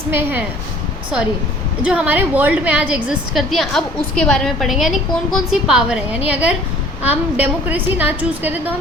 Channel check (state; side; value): normal; both; correlation 0.52